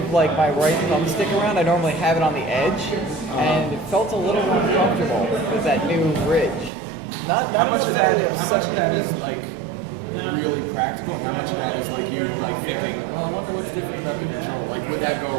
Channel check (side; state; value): left; drops out; at 6.7 s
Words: like my right thumbstick around, I normally have it on the edge, and it felt a little uncomfortable with that new bridge. Not How much enough of to that? really How much upset of me. that is like really practical, and how much of that is like you like thinking, well, I wonder what's different about the control? Like, would that go